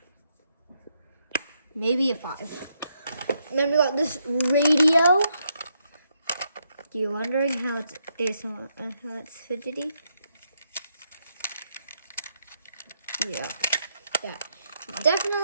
Maybe a 5. And then we got this radio. You're wondering how it's fidgety? Yeah,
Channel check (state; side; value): inverted; both; correlation -0.78